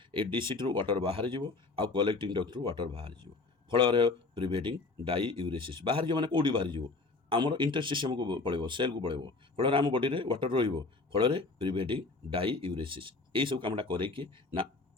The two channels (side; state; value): right; quieter; 3.6 dB